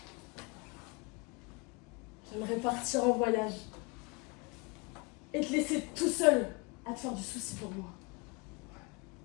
J'aimerais partir en voyage et te laisser tout seul à te faire du souci pour moi.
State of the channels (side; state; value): right; quieter; 28.7 dB